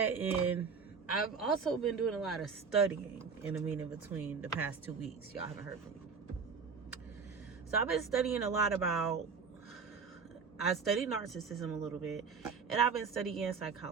And I've also been doing a lot of studying in between the past 2 weeks. Y'all haven't heard from me. So I've been studying a lot I studied narcissism a little bit, and I've been studying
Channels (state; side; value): quieter; left; 5.4 dB